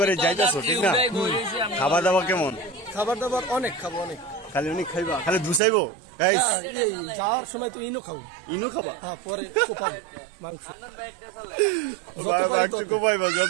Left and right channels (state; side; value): drops out; left; at 5.6 s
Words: যাইতেছো ঠিক না? খাবার দাবার কেমন? খাবার দাবার অনেক খাবো, অনেক খালি অনেক খাইবা, খালি ধুসাইবো গাইস। এই যাওয়ার সময় তো ইনো খাবো। ইনো খাবা? হ্যাঁ, পরে কোপাবো মাংস। কোপাইবা